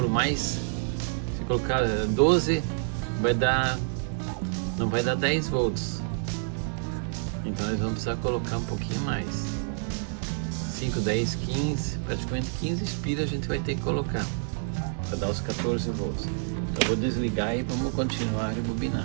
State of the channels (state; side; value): silent; left; digital silence